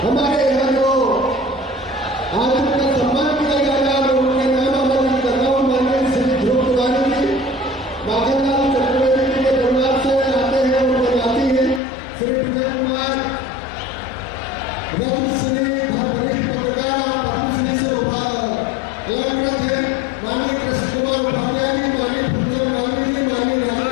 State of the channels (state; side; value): drops out; right; at 11.8 s